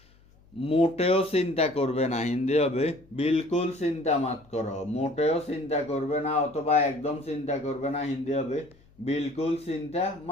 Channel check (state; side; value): noise; left; hum, 29 dB below the sound